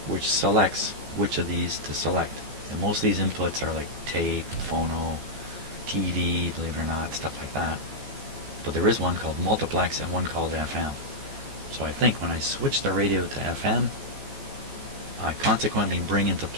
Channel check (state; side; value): late; left; 15 ms